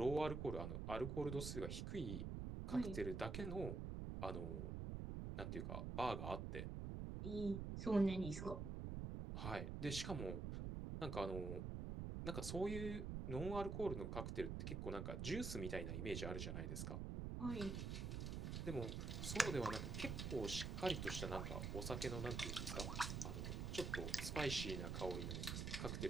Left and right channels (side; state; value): right; noise; rumble, 2 dB below the sound